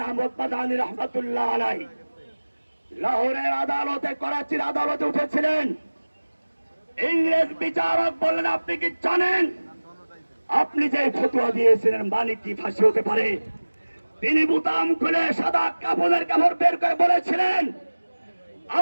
আহমদ মাদানী রহমাতুল্লাহ আলাইহি লাহোরের আদালতে, করাচির আদালতে উঠেছিলেন। ইংরেজ বিচারক বললেন, আপনি কি জানেন আপনি যে ফতোয়া দিয়েছিলেন মানে কি ফাঁসি হতে পারে? তিনি বুতাম খুলে সাদা কাফনের কাপড় বের করে বলেছিলেন,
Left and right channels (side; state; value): both; inverted; correlation -1.00